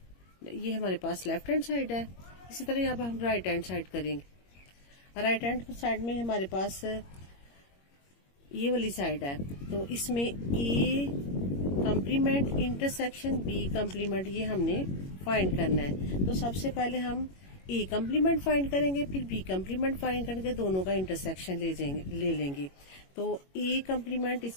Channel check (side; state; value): right; late; 21 ms